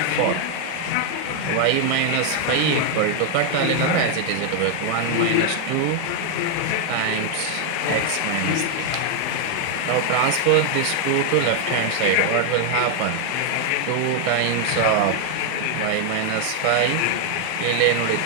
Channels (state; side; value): different; both; correlation 0.00